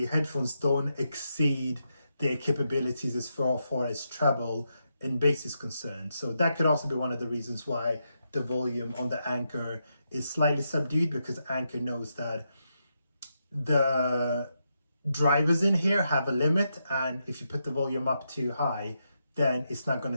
headphones don't exceed their capabilities as far as treble and bass is concerned. So that could also be one of the reasons why the volume on the Anker is slightly subdued, because Anker knows that the drivers in here have a limit, and if you put the volume up too high, then it's not going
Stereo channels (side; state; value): both; inverted; correlation -0.83